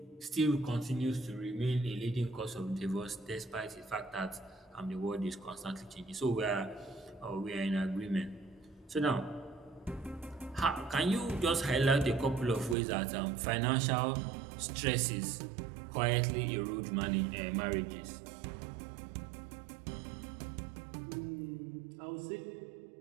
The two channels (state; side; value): drops out; left; at 12.8 s